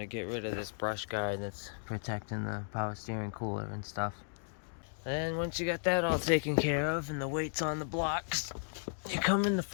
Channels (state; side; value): silent; right; digital silence